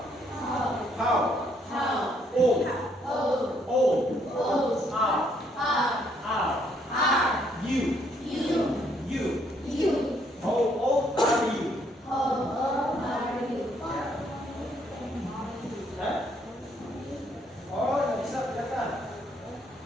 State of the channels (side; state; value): both; normal; correlation 0.69